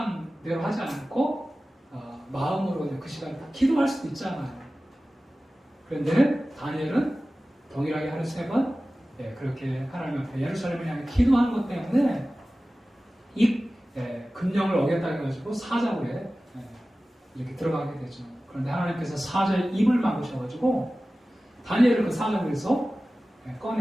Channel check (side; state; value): both; normal; correlation 0.96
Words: 하지 않고 마음으로 그 시간에 다 기도할 수도 있잖아요. 그런데 다니엘은 동일하게 하루 3번 그렇게 하나님 앞에 예루살렘을 향해 기도하는 것 때문에 이 금령을 어겼다 해가지고 사자굴에 이렇게 들어가게 되죠. 그런데 하나님께서 사자의 입을 막으셔가지고 다니엘을 그 사자굴에서